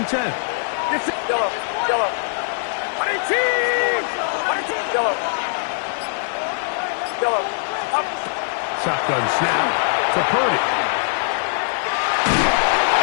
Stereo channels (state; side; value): silent; right; digital silence